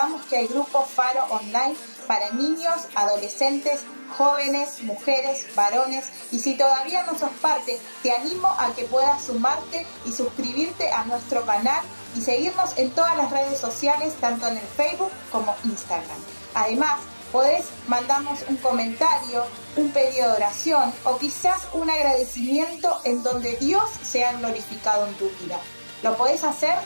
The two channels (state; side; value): inverted; both; correlation -1.00